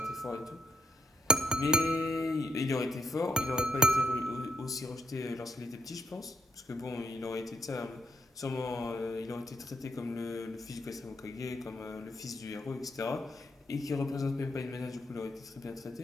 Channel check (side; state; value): both; normal; correlation 0.73